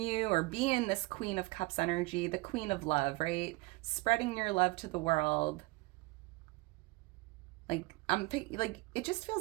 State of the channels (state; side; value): quieter; left; 23.2 dB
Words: or be in this Queen of Cups energy, the Queen of Love, right? Spreading your love to the world. Like, it just